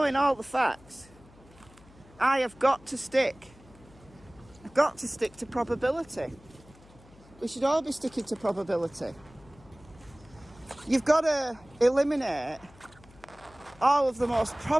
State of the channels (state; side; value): noise; left; hum, 25 dB below the sound